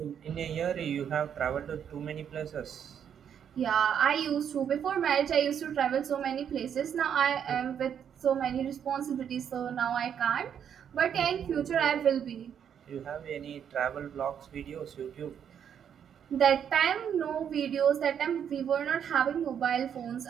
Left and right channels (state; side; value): quieter; left; 8.4 dB